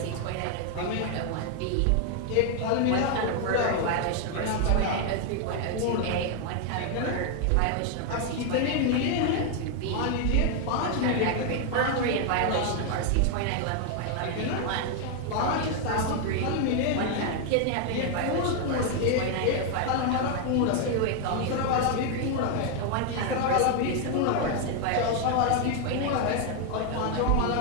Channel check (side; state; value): both; different; correlation 0.00